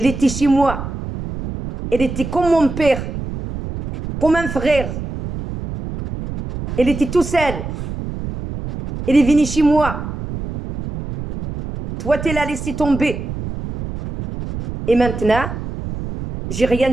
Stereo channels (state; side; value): noise; right; rumble, 7 dB below the sound